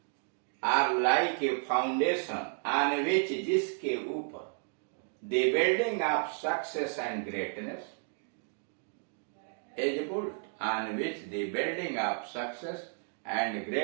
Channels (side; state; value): left; silent; 56 dB below the other